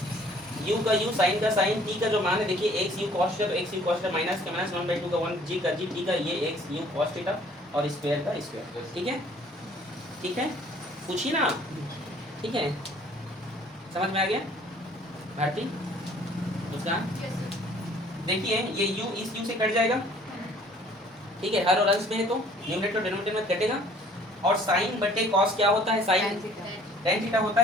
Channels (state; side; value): normal; both; correlation 0.56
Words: u का u, साइन का साइन, t का जो मान है देखिए x u cos theta, x u cos theta, minus का माइनस 1/2 का 1, g का g, t का ये x u cos थीटा, और स्क्वायर का स्क्वायर, ठीक है, ठीक है। पूछिए ना, ठीक है, समझ में आ गया भारती? मुस्कान देखिए ये u इस u से कट जाएगा, ठीक है, हर और अंश में है तो न्यूमरेटर और डिनोमिनेटर में कटेगा, और साइन बटे कॉस क्या होता है, साइन tan थीटा होता